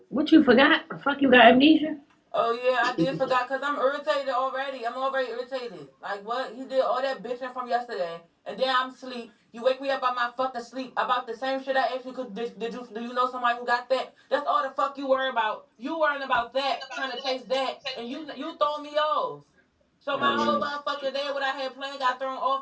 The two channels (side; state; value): both; identical; correlation 1.00